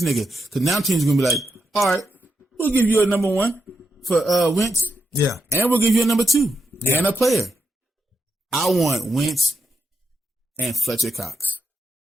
nigga. Because now teams gonna be like, all right, we'll give you a number 1 for Wentz, and we'll give you a number 2 and a player. I want Wentz and Fletcher Cox,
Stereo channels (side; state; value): both; normal; correlation 0.86